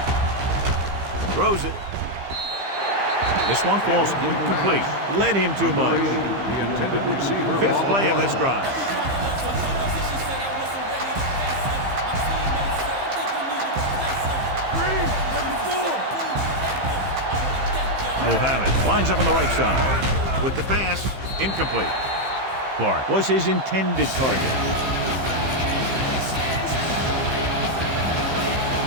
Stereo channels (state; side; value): late; left; 15 ms